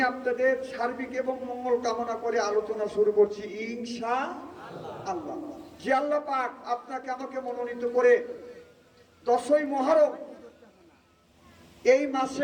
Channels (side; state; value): both; identical; correlation 1.00